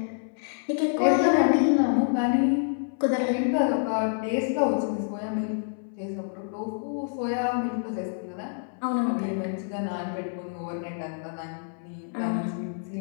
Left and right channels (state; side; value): silent; right; 60 dB below the other